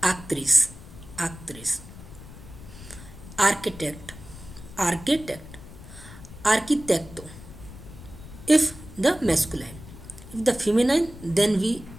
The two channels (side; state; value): left; noise; rumble, 16 dB below the sound